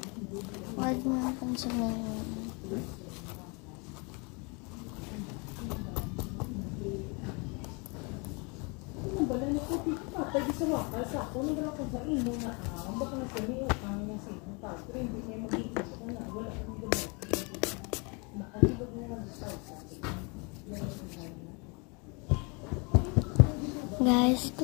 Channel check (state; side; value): quieter; right; 31.5 dB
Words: Huwag mo ang pansinin. Guys,